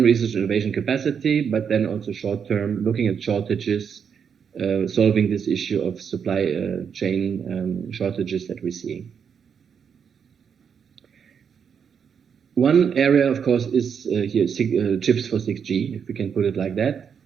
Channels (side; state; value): left; quieter; 7.1 dB